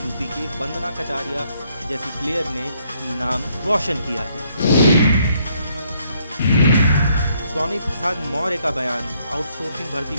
के वंदना कटारिया जैसी प्लेयर ने नाम रोशन किया है। स्वामी प्रसाद मौर्य का बयान। आउटसोर्सिंग भर्ती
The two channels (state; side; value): inverted; both; correlation -0.70